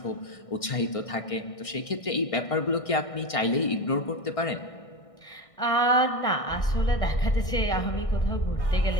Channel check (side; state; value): right; late; 1.6 ms